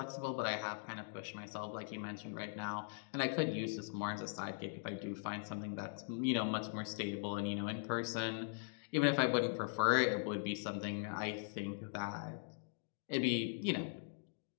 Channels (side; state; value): right; silent; digital silence